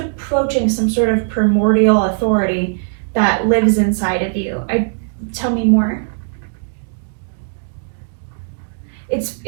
some sort of primordial authority that lives inside of you. Tell me more.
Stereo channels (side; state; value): left; silent; digital silence